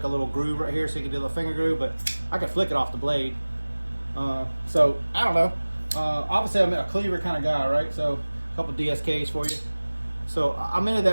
a little groove right here so you can do the finger groove, but I could flick it off the blade. So I don't know. Obviously I'm a cleaver kind of guy, right? So a couple DSKs for you. So I'm into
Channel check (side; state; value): both; inverted; correlation -1.00